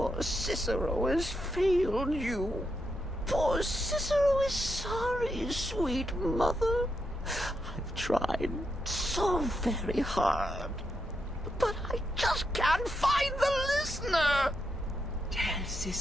Cicero has failed you. Poor Cicero is sorry, sweet mother. I've tried so very hard, but I just can't find the listener. Tell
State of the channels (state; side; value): normal; both; correlation 0.83